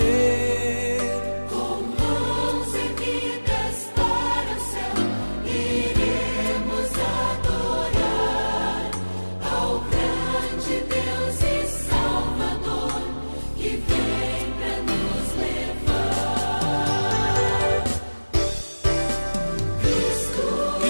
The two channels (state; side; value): inverted; both; correlation -1.00